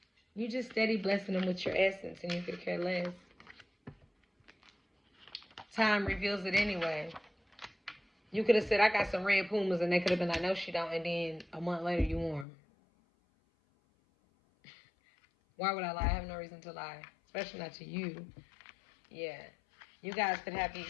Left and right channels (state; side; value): drops out; right; at 12.5 s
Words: you just steady blessing them with your essence, and you could care less. Time reveals it anyway. You could have said, I got some red Pumas, and they could have been like, no, she don't, and then a month later you wore them. Why would I lie? I have no reason to lie, especially not to you. Yeah. You guys could be